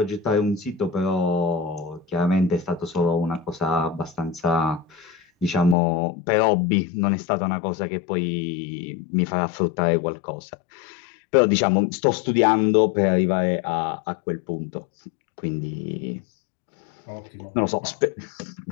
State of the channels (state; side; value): drops out; right; at 5.8 s